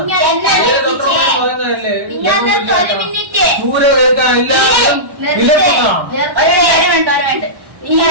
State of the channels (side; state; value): left; late; 1.1 ms